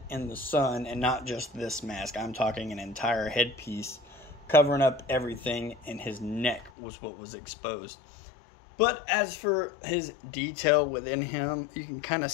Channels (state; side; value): drops out; right; at 6.7 s